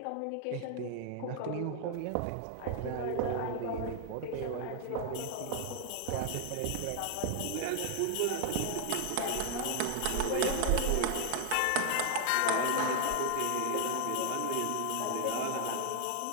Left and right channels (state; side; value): different; both; correlation 0.00